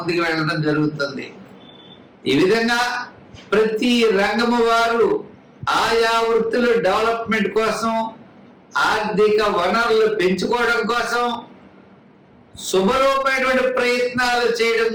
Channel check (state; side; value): identical; both; correlation 1.00